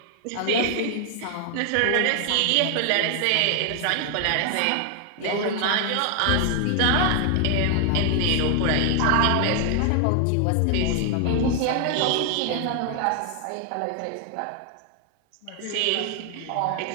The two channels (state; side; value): different; both; correlation 0.00